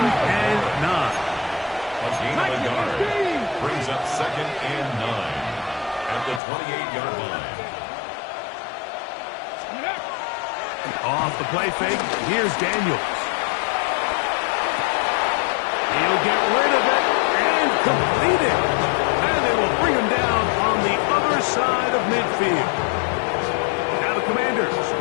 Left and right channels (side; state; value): right; drops out; at 6.4 s